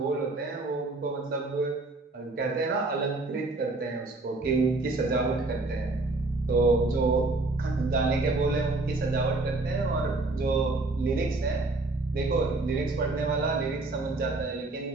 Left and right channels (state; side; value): quieter; left; 3.2 dB